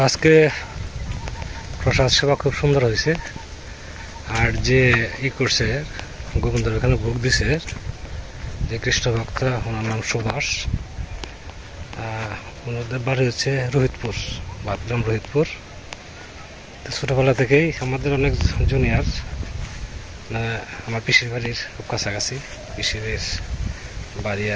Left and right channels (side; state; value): both; identical; correlation 1.00